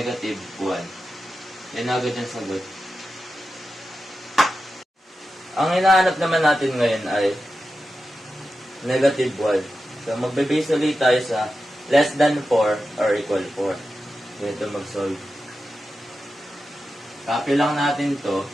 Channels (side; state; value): both; normal; correlation 0.91